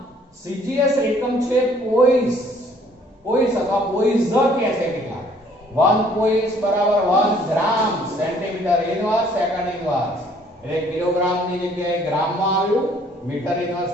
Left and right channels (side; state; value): both; normal; correlation 0.60